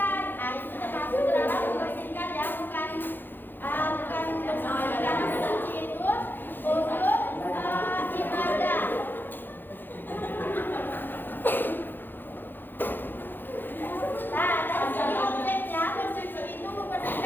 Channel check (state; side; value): late; right; 0.094 ms